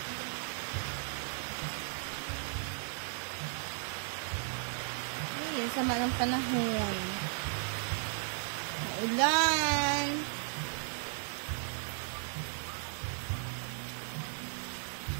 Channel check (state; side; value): silent; left; digital silence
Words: Ayun, sama ng panahon. Maulan.